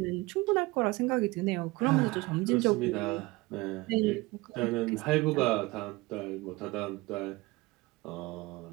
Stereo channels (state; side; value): quieter; left; 22.1 dB